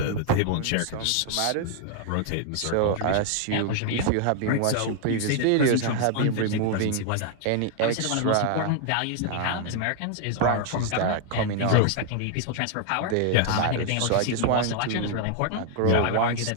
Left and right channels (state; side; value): different; both; correlation 0.00